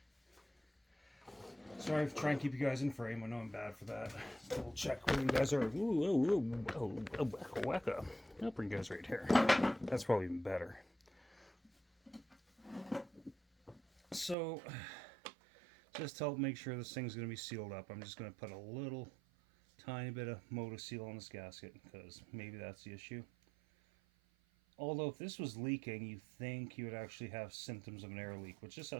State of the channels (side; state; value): left; drops out; at 14.4 s